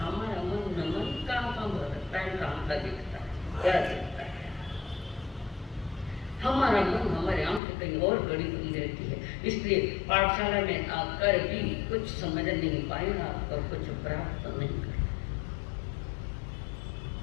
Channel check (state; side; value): drops out; right; at 7.6 s